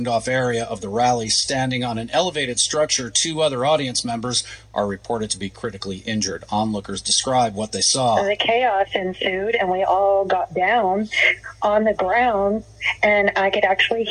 area of the rally, standing on an elevated structure. Two other audience members are reported to be critically injured. Onlookers describe what they saw. The chaos ensued, and we all got down on the ground, and I could actually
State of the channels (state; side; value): identical; both; correlation 1.00